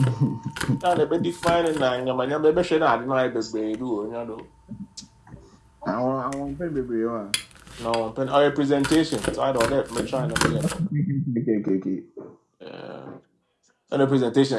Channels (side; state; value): both; identical; correlation 1.00